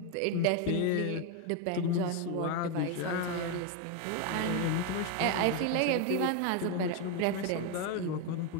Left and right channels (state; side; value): different; both; correlation 0.02